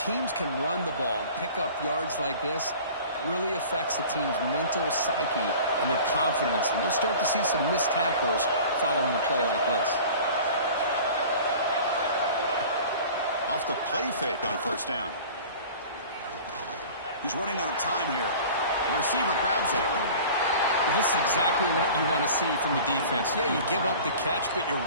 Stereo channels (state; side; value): inverted; both; correlation -0.42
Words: can run the ball and pick up yards like this, it really affects the team's mental psyche and their confidence. And you'll start to see some missed tackles following a play like this. Off the play fake on first down. He's running out of time here. The receiver grabs it. Well, this is exactly what you want to see from the defense. Yeah, you give up the catch, but you're